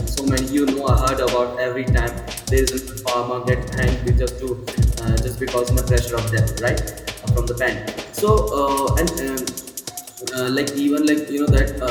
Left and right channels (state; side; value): identical; both; correlation 1.00